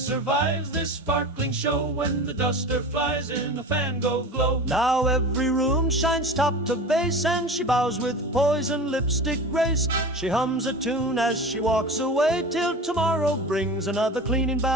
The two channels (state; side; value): normal; both; correlation 0.32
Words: this sparkling show when the duster flies in a fango glow. Now every room shines top to base, and she bows with poise and lipstick grace. She hums a tune as she walks away till tomorrow brings another cleaning